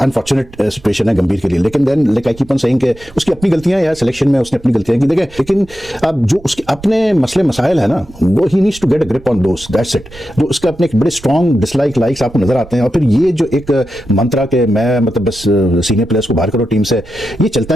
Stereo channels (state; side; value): noise; right; rumble, 20 dB below the sound